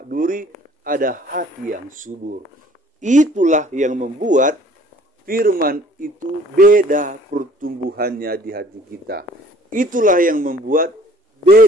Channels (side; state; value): both; normal; correlation 0.55